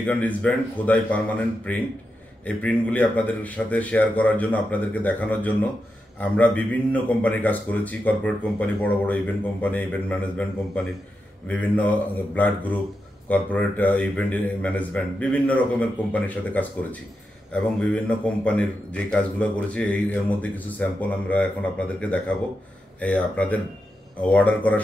রিস্টব্যান্ড খোদাই পার্মানেন্ট প্রিন্ট, এই প্রিন্টগুলি আপনাদের সাথে শেয়ার করার জন্য, আপনাদেরকে দেখানোর জন্য আমরা বিভিন্ন কোম্পানির কাজ করেছি। কর্পোরেট কোম্পানি, বড় বড় event company, event management company, বিভিন্ন blood group, corporate event management, বিভিন্ন রকমের কোম্পানির সাথে কাজ করেছি এবং বিভিন্ন কোম্পানির যে কাজগুলো করেছি এর মধ্যে কিছু স্যাম্পল আমরা এখন আপনাদেরকে দেখাবো আপনাদের অর্ডার করার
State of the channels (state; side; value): normal; both; correlation 0.87